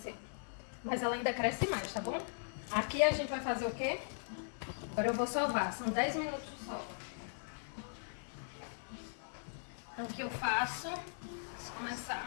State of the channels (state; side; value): silent; right; 52 dB below the other